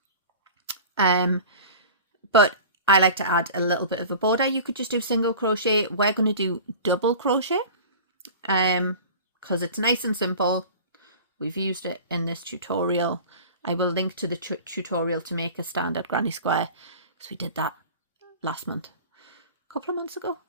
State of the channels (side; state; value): both; inverted; correlation -0.39